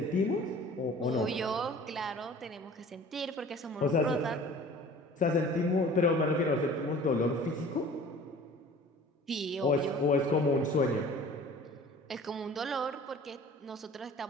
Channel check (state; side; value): normal; both; correlation 0.46